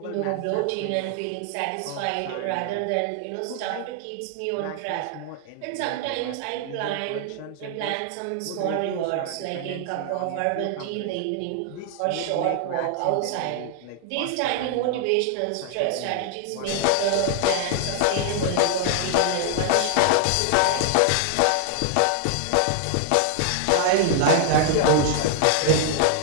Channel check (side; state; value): both; different; correlation 0.00